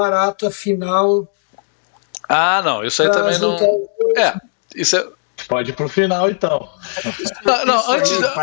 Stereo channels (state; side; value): silent; right; digital silence